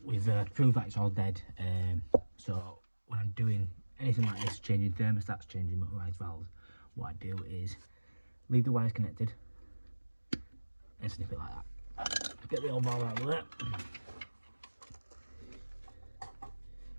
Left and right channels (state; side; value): inverted; both; correlation -1.00